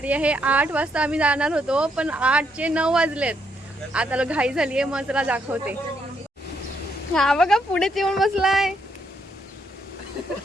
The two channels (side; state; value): both; normal; correlation 0.75